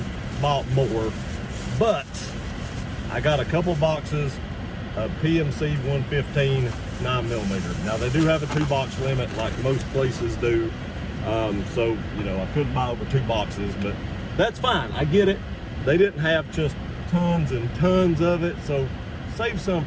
bought more, but I got a couple boxes of PMC 115 9mm. Now they do have a 2-box limit like most places do, so you know, I couldn't buy over 2 boxes, but that's fine. I get it. They didn't have just tons and tons of it, so save some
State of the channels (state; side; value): identical; both; correlation 1.00